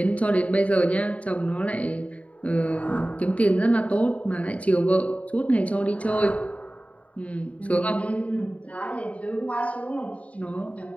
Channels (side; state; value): right; late; 0.066 ms